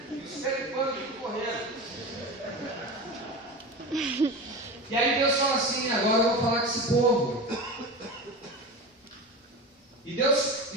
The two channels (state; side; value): normal; both; correlation 0.27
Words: E os pés de pano tudo correndo. E aí Deus fala assim: agora eu vou falar com esse povo. E Deus